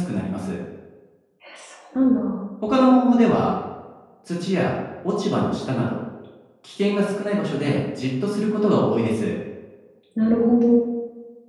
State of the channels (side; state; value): both; identical; correlation 1.00